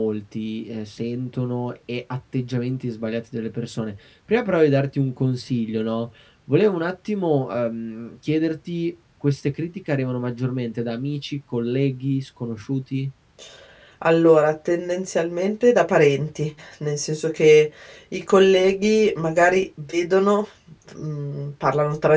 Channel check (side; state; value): both; identical; correlation 1.00